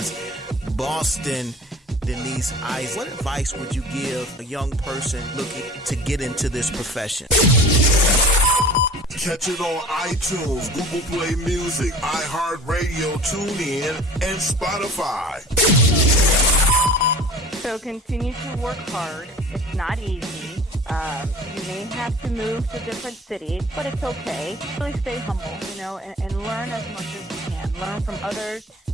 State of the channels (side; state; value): both; normal; correlation 0.42